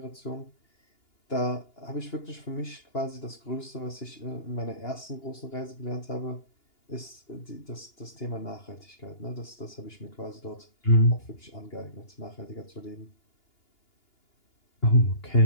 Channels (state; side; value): late; right; 2.9 ms